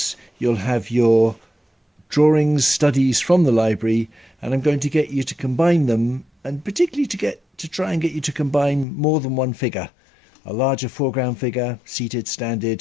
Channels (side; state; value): right; drops out; at 8.8 s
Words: you'll have your drawings, studies from the library, and I'm going to get you to combine them, and particularly to try and get you to combine more than one figure. A larger foreground figure, seated, standing,